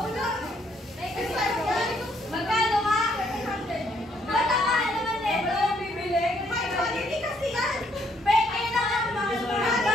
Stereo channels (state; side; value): normal; both; correlation 0.69